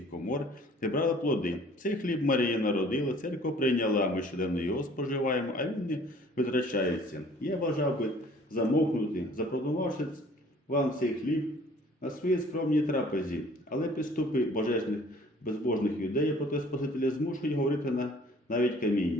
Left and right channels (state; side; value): normal; both; correlation 0.53